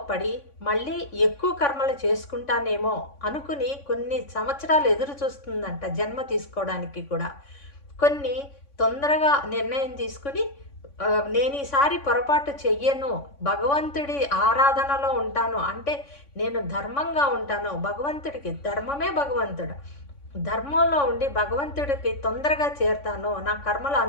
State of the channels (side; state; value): right; late; 3.6 ms